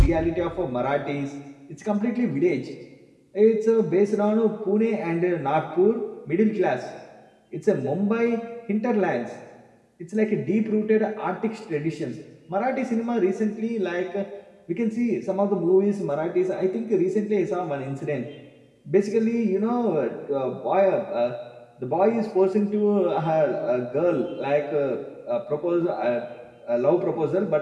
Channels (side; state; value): both; identical; correlation 1.00